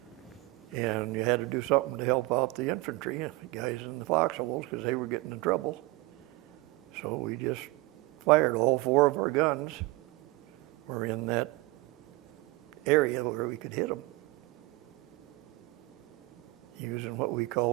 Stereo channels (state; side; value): quieter; left; 21.2 dB